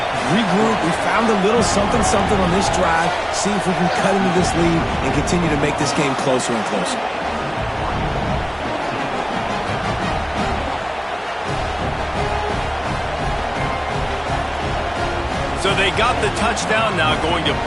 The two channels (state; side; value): identical; both; correlation 1.00